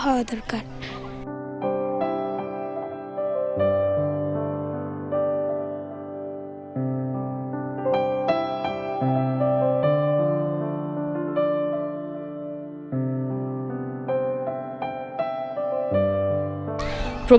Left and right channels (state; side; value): identical; both; correlation 1.00